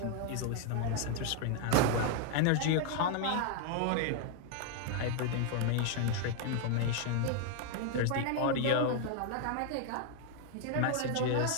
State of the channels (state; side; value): different; both; correlation 0.00